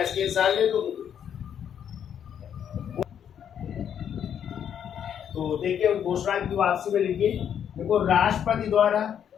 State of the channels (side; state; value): right; quieter; 8.8 dB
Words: स्क्रीनशॉट ले लो। तो देखिए उद्घोषणा की वापसी में लिखिए, देखो राष्ट्रपति